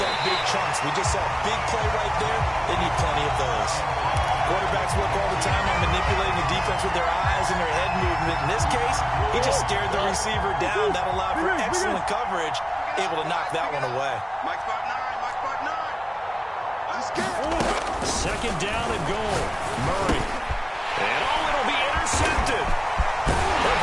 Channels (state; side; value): identical; both; correlation 1.00